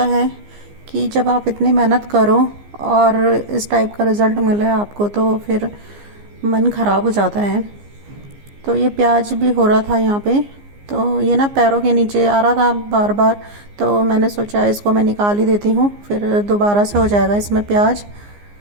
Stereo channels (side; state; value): left; late; 15 ms